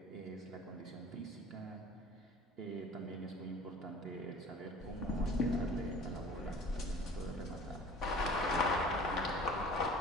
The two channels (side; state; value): both; normal; correlation 0.46